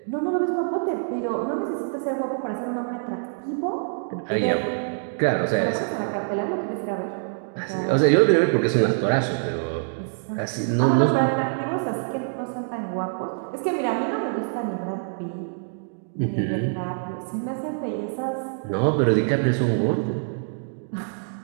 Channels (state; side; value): silent; left; digital silence